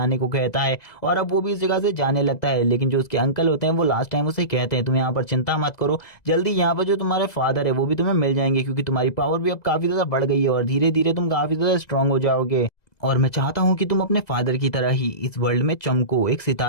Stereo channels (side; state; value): right; late; 2.0 ms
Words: को कहता है और अब वो भी इस जगह से जाने लगता है। लेकिन जो उसके अंकल होते हैं वो लास्ट टाइम उसे कहते हैं तुम यहाँ पर चिंता मत करो, जल्दी यहाँ पर जो तुम्हारे फादर है वो भी तुम्हें मिल जाएंगे, क्योंकि तुम्हारी पावर भी अब काफी ज्यादा बढ़ गई है और धीरे धीरे तुम काफी ज्यादा स्ट्रांग हो जाओगे। और मैं चाहता हूँ कि तुम अपने फादर की तरह ही इस वर्ल्ड में चमको, एक